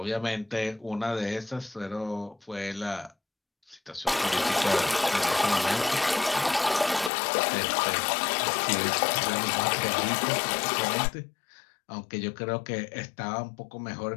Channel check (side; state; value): right; drops out; at 7.1 s